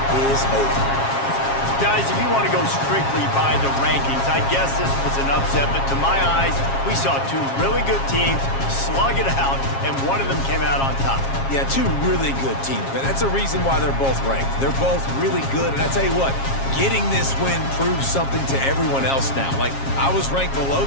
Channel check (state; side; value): late; right; 7.4 ms